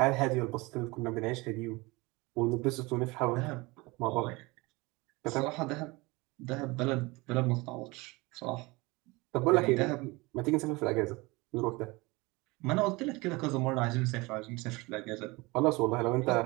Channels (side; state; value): left; quieter; 23.8 dB